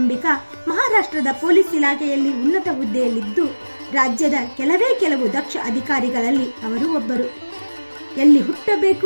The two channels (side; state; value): both; inverted; correlation -1.00